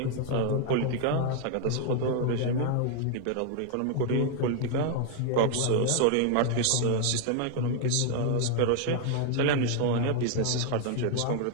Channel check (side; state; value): both; different; correlation 0.00